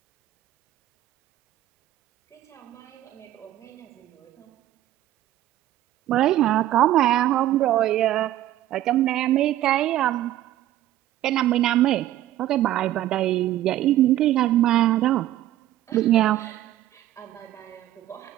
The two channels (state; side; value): quieter; left; 13.7 dB